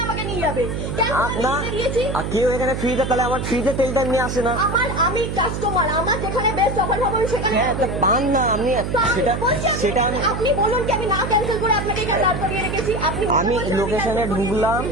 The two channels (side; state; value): right; noise; hum, 4 dB below the sound